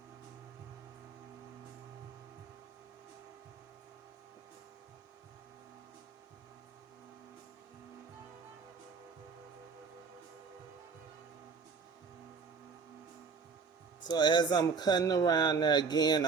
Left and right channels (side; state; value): left; quieter; 5.3 dB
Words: So as I'm cutting around there again,